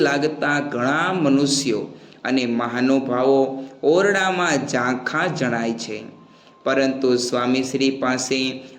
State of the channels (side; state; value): both; identical; correlation 1.00